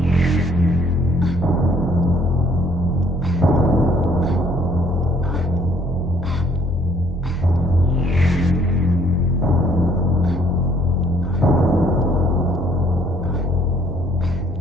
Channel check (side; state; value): both; normal; correlation 0.62